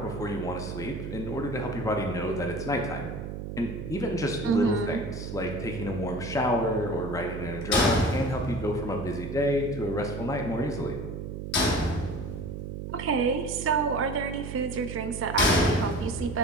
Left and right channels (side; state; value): right; noise; hum, 7 dB below the sound